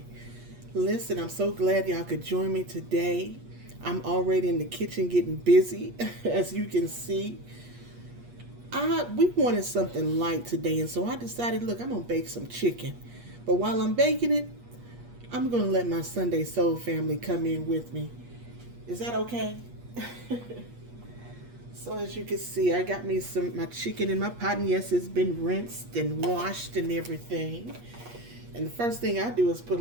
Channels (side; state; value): left; late; 8.4 ms